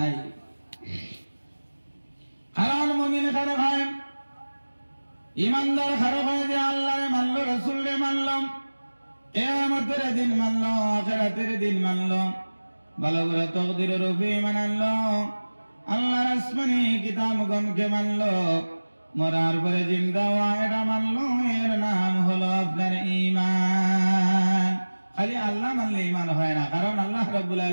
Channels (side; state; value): both; inverted; correlation -1.00